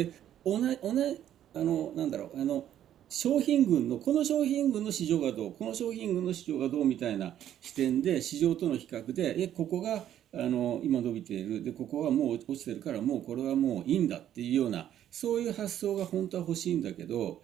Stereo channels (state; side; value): quieter; left; 11.0 dB